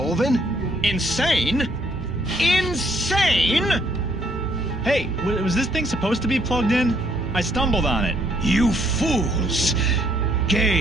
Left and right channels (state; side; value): normal; both; correlation 0.68